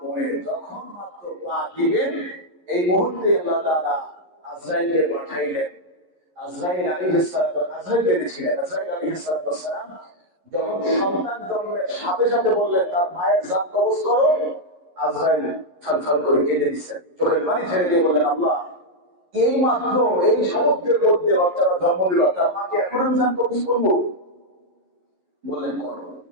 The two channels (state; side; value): late; left; 11 ms